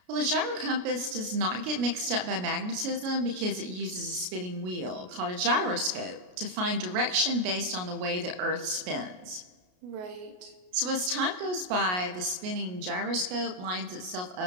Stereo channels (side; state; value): left; late; 33 ms